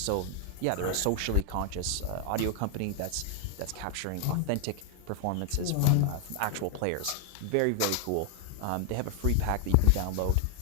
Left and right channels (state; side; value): different; both; correlation 0.00